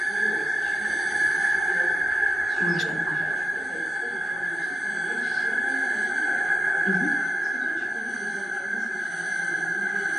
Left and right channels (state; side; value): normal; both; correlation 0.89